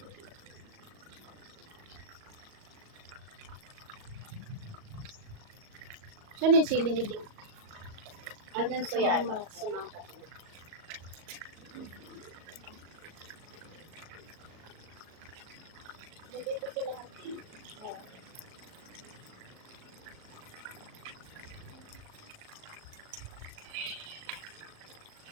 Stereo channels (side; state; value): left; late; 38 ms